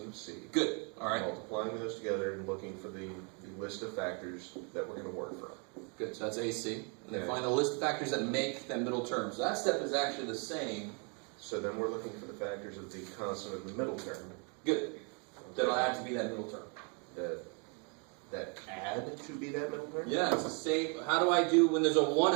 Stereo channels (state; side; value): quieter; left; 36.1 dB